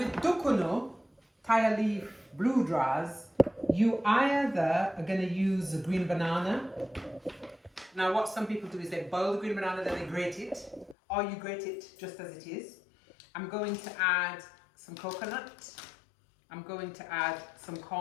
Duckunoo, tire leaf, blue dras, you either are going to use a green banana. Now what some people do is they boil the green banana, then they grate it, or you grate it just as it is. I'm going to add some coconut, I'm going to add some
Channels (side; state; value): right; drops out; at 11.0 s